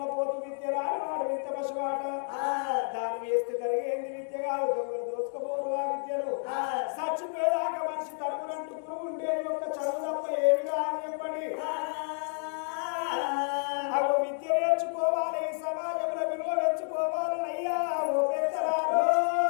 విద్య రాని వాడు విద్య పశువాట దాని వేస్తే జరిగేంది విద్య కాదు దొంగలు దోసుకుపోరు ఆ విద్యను చచ్చిపోయేదాకా మనిషి తరుగునంటూ పురుగు ఉండేది ఒక్క చదువు తప్ప ఏమి రాని చెప్పండి అవి విద్య నేర్చుకోవాలి సమాజంలో విలువ పెంచుకోవాలని అయ్యా ఓ పెద్దరారు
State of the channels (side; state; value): right; silent; digital silence